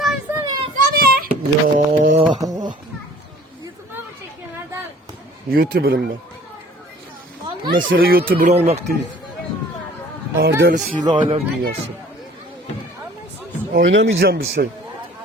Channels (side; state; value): both; normal; correlation 0.51